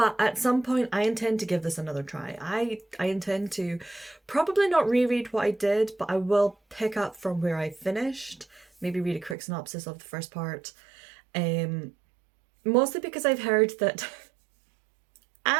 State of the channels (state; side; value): drops out; left; at 9.3 s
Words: at some point I intend to give this another try. I intend to probably not reread what I did, but I will pick up from where I finished, maybe read a quick synopsis of the first part, mostly because I've heard that